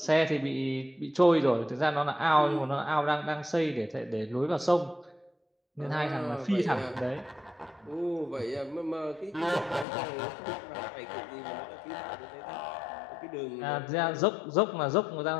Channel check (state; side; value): drops out; right; at 9.9 s